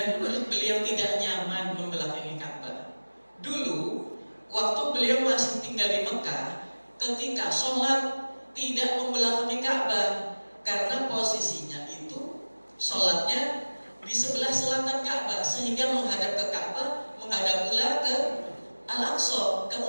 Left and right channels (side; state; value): both; inverted; correlation -1.00